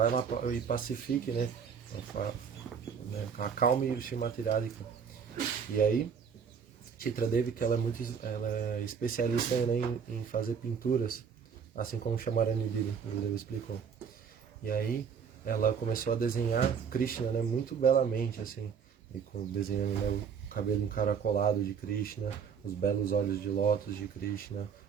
lá e pacifique, né? Acalme o Srimati Radhika. E aí, Chitra Devi, que ela é especialista em fazer pinturas, assim como Shamarani Devi, o Gurudev explicou. E aí, ela começou a desenhar Krishna, né, muito belamente, assim, desenhando, né, o cabelo encaracolado de Krishna, os belos olhos de lótus de Krishna,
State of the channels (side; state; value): left; quieter; 6.8 dB